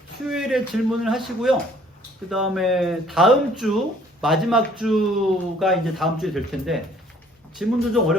수요일에 질문을 하시고요. 그 다음에 다음 주 마지막 주가 이제 다음 주에 될 텐데 질문도 좀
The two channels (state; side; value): normal; both; correlation 0.58